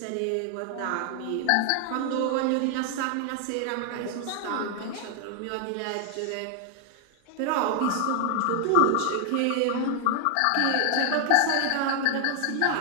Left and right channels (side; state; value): both; different; correlation 0.00